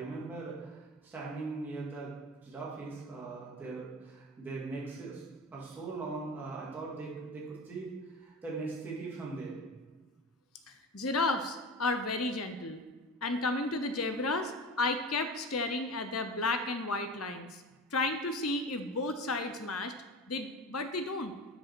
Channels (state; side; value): normal; both; correlation 0.30